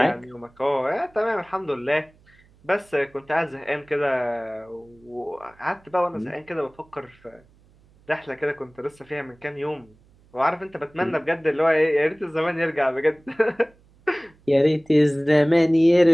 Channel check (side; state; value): right; noise; hum, 30 dB below the sound